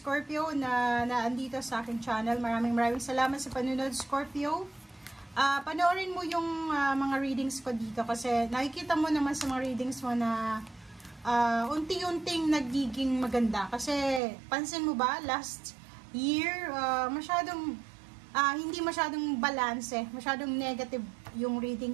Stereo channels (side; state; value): left; drops out; at 14.2 s